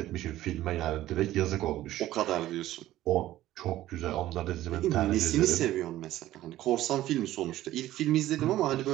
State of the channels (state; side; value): quieter; left; 14.6 dB